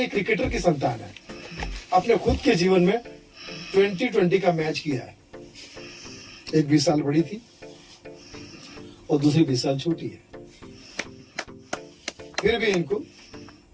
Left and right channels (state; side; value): identical; both; correlation 1.00